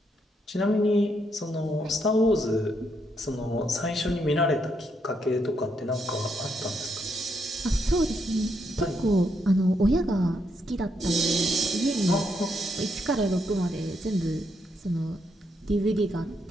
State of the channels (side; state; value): both; normal; correlation 0.77